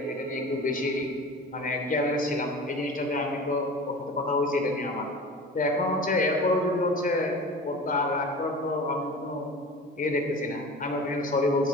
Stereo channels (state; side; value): normal; both; correlation 0.37